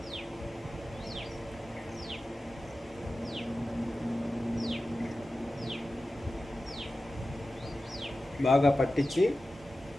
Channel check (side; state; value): both; normal; correlation 0.94